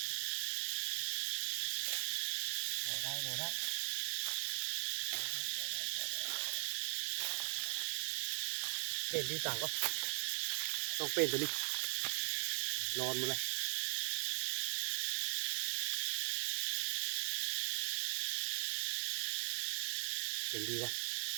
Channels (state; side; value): silent; left; digital silence